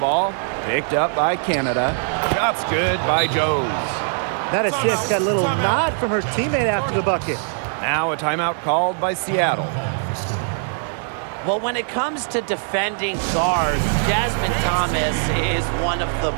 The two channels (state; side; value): silent; left; 63 dB below the other